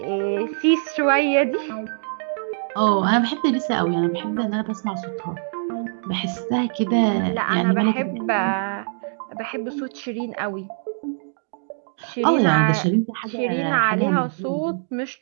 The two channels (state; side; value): silent; left; digital silence